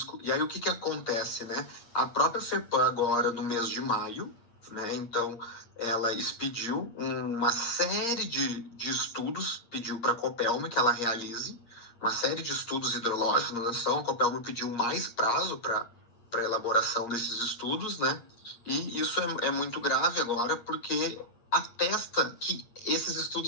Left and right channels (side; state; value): right; late; 8.6 ms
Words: E aí o que acontece, né? A própria FEPAM agora, no mês de maio, né, então ela expediu uma série de estudos, pediu para a Copelm que ela realize uma série de estudos hidrológicos na nação. A Copelm pediu mais prazo para a elaboração desses estudos, né? E isso é muito grave agora, porque atesta que esses